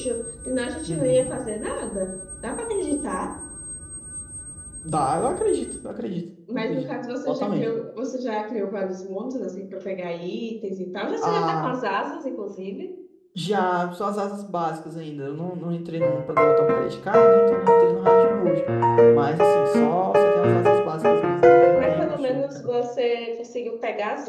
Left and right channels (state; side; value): identical; both; correlation 1.00